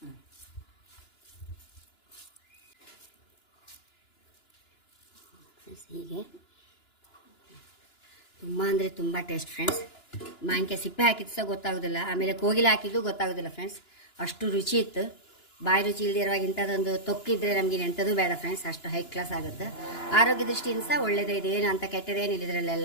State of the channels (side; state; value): right; late; 2.9 ms